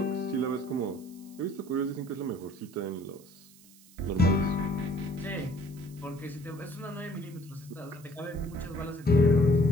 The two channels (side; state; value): right; noise; hiss, 24 dB below the sound